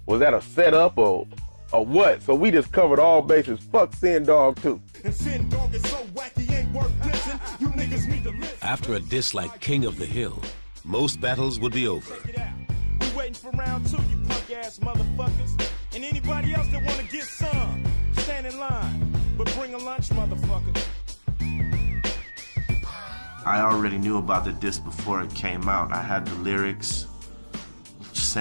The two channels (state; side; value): inverted; both; correlation -1.00